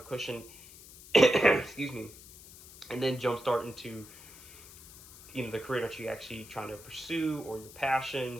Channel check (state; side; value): noise; left; hiss, 18 dB below the sound